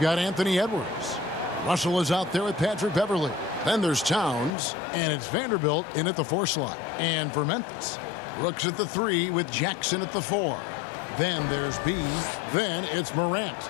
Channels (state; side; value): drops out; right; at 4.5 s